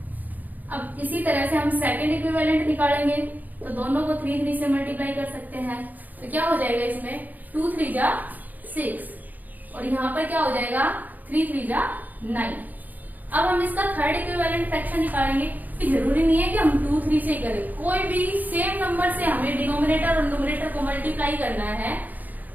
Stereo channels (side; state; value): left; late; 0.082 ms